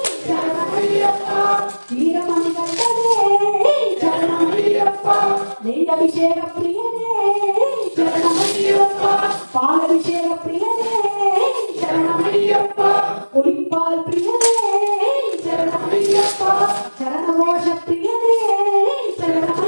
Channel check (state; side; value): inverted; both; correlation -1.00